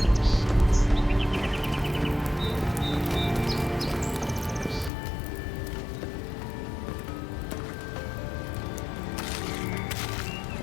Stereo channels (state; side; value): drops out; right; at 4.9 s